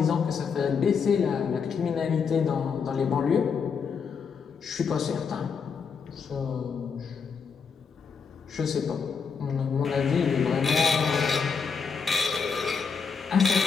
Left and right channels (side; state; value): right; quieter; 5.9 dB